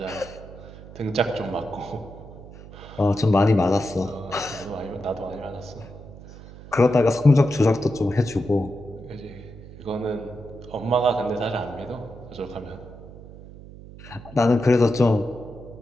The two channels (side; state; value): right; noise; hum, 17 dB below the sound